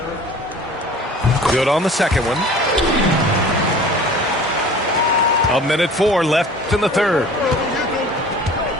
Good on the second one. 1:04 left in the third.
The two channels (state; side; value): normal; both; correlation 0.44